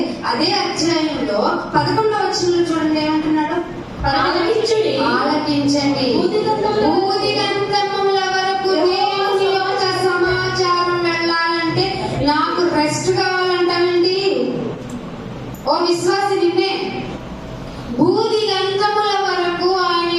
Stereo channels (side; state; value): both; identical; correlation 1.00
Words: అదే అధ్యాయంలో 11వ వచనంలో చూడండి ఏమంటున్నాడు? ఆలకించండి. భూదిగంతముల వరకు దేవుని యొక్క సమాచారం వెళ్ళాలంటే నాకు రెస్ట్ కావాలంటానండి. ఓ విశ్వాసి, నిన్నే భూదిగంతముల వరకు ఆయన